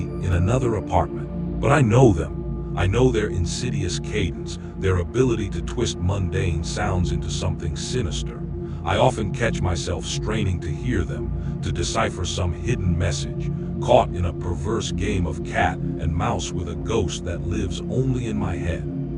in another apartment. But I know them. I know their insidious cadence, their ability to twist mundane sounds into something sinister. I often catch myself straining to hear them, to decipher some hidden message, caught in a perverse game of cat and mouse with a ghost that lives only in my head.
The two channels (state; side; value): identical; both; correlation 1.00